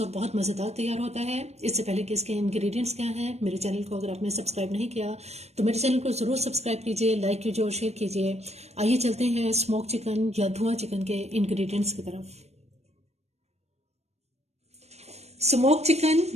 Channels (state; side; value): late; left; 0.31 ms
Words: और बहुत मज़ेदार तैयार होता है। इससे पहले कि इसके इंग्रेडिएंट्स क्या हैं, मेरे चैनल को अगर आपने सब्सक्राइब नहीं किया तो मेरे चैनल को ज़रूर सब्सक्राइब कीजिए, लाइक कीजिए और शेयर कीजिए। आइए चलते हैं स्मोक चिकन या धुआं चिकन के इंग्रेडिएंट्स की तरफ। स्मोक चिकन